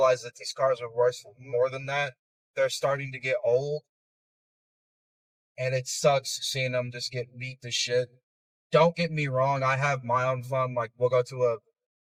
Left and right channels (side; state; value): both; identical; correlation 1.00